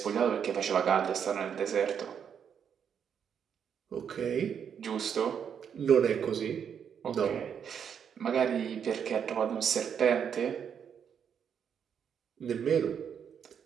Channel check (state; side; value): quieter; left; 7.8 dB